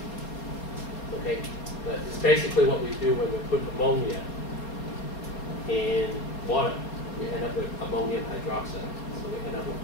Okay? But it's basically what we do when we put ammonia in water. We end up with ammonium hydroxide. So we end up with a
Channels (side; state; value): right; late; 4.2 ms